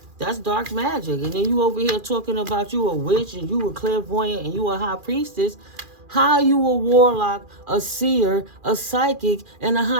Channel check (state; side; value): late; left; 2.4 ms